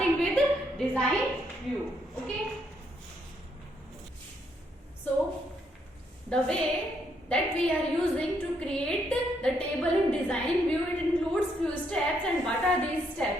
with design view. Okay, so the way that we are using to create the table in design view, it includes few steps. And what are these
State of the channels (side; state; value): both; normal; correlation 0.74